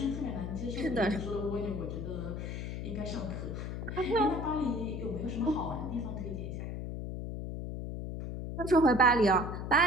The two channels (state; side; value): noise; left; hum, 5 dB below the sound